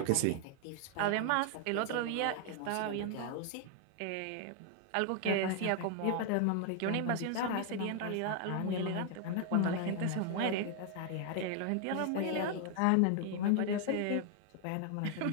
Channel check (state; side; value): different; both; correlation 0.00